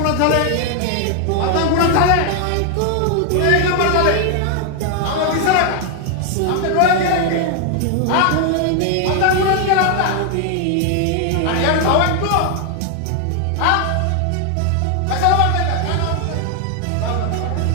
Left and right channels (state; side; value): different; both; correlation 0.00